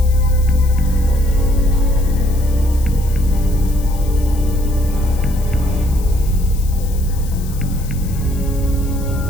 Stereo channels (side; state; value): left; noise; hiss, 18 dB below the sound